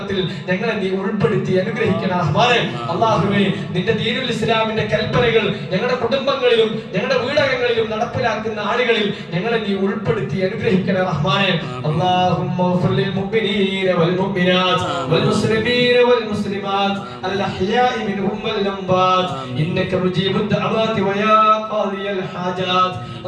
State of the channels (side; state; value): both; identical; correlation 1.00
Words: ഞങ്ങളെ നീ ഉൾപ്പെടുത്തി അനുഗ്രഹിക്കണേ റഹ്മാനെ. അല്ലാഹുവേ, നിന്റെ ദീനുൽ ഇസ്ലാമിന്റെ കൽപ്പനകൾ ഞങ്ങളുടെ കുടുംബങ്ങളിലും ഞങ്ങളുടെ വീടകങ്ങളിലും നടപ്പിലാക്കുന്ന ആളുകളിൽ ഞങ്ങളെ നീ ഉൾപ്പെടുത്തി അനുഗ്രഹിക്കണേ റഹ്മാനെ. അല്ലാഹുമ്മ ഗ്ഫിർ ലിൽ മുഅ്മിനീന വൽ മുഅ്മിനാത്ത് വൽ മുസ്ലിമീന വൽ മുസ്ലിമാത്ത് അൽ അഹ്യാഇ മിൻഹും വൽ അംവാത്ത് ഇന്നക മുജീബുദ് ദഅവാതി വയാ ഖാദിയൽ ഹാജാത്ത്.